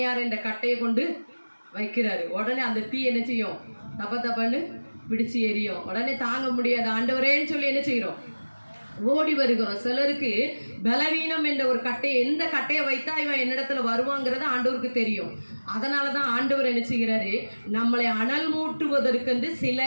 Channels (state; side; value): inverted; both; correlation -1.00